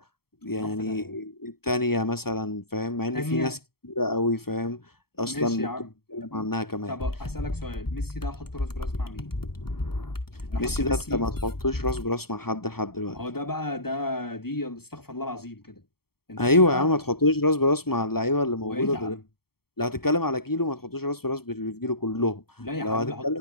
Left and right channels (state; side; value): late; right; 0.95 ms